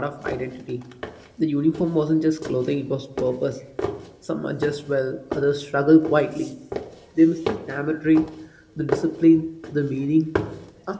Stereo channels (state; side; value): identical; both; correlation 1.00